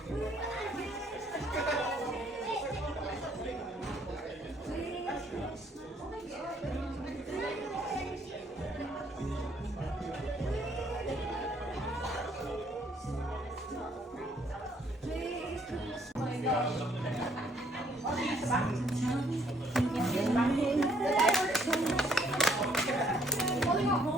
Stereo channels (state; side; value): normal; both; correlation 0.65